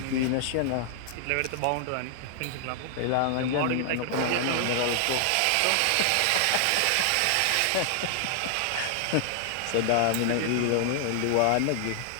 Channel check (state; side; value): different; both; correlation 0.00